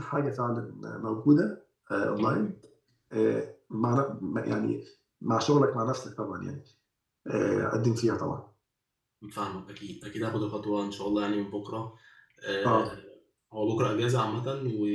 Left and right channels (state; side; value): identical; both; correlation 1.00